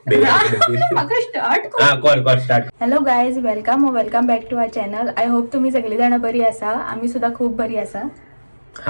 start. Hello guys, welcome back to our channel. I hope तुम्ही सगळे जण बरी आसा. आम्ही सुद्धा खूप बरी आसा.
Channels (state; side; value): inverted; both; correlation -1.00